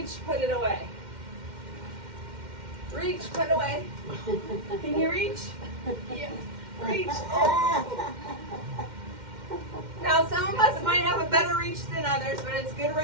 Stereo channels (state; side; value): late; left; 2.1 ms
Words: put it away. Reach, put it away. Can you reach? Yeah. Reach. Oh. Now some of us might have a better reach than others, but it's good